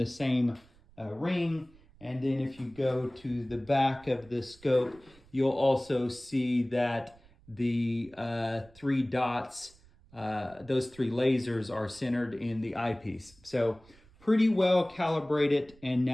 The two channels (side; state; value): right; noise; rumble, 27 dB below the sound